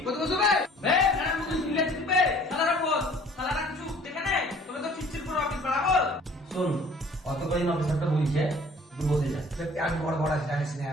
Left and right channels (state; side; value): normal; both; correlation 0.53